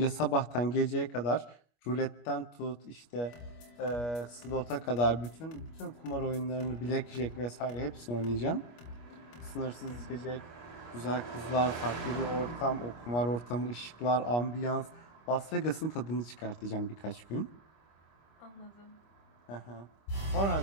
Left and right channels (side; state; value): right; late; 25 ms